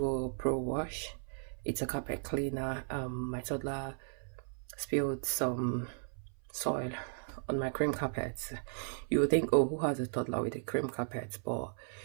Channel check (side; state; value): left; silent; 54 dB below the other